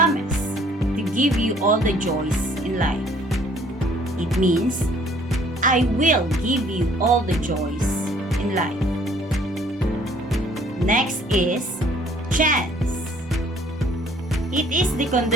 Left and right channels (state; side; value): normal; both; correlation 0.58